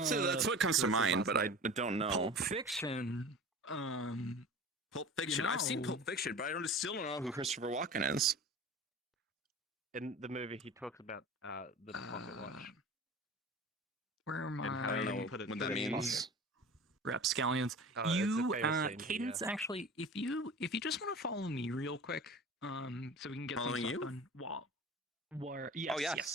what comes to What's his mind, last but I name? don't know. Pulp Fiction. Pulp Fiction. I've seen know. Pulp Fiction, but I still don't know who Christopher Walken is. In the movie, he talks about the pocket watch. Where am And how I I? don't know put it what in that his means. Rapscallions. Oh, it's a You, famous scene, Cadence. yeah. Actually, if you just want to follow me real quick, so we can get Following some stuff you? done. Where? Yes,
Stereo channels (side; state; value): both; normal; correlation 0.37